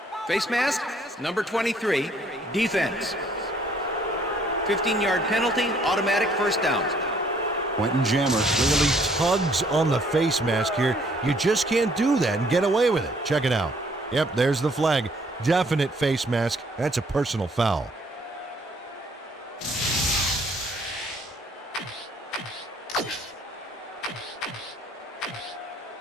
Face mask, number 23, defense. 15-yard penalty, automatic 1st down. Quentin Jammer clearly tugs on the face mask here. You just can't do that and get away with it. Check it out. Yep, there's the flag. Definite face mask. That's a personal foul.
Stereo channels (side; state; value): both; normal; correlation 0.63